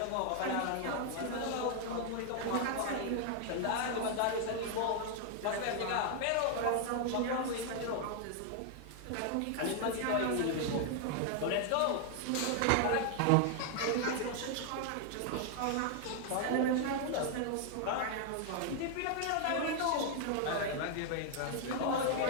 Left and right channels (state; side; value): different; both; correlation 0.00